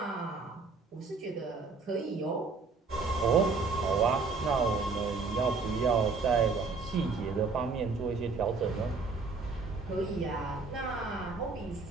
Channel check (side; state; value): left; quieter; 4.3 dB